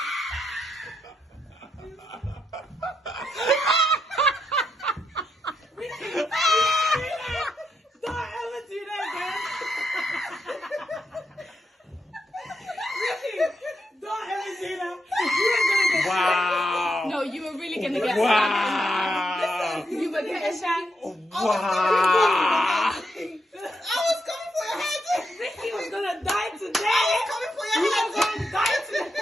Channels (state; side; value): normal; both; correlation 0.81